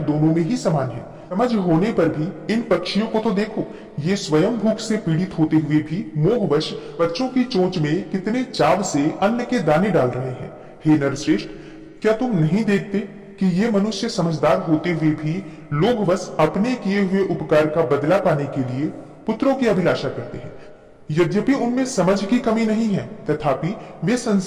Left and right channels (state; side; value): identical; both; correlation 1.00